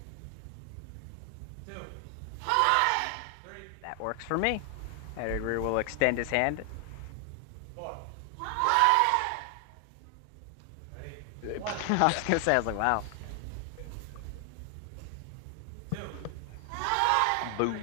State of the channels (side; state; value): both; different; correlation 0.00